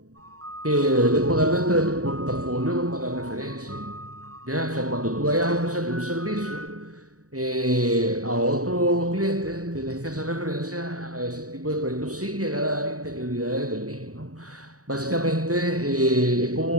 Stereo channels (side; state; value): left; late; 0.66 ms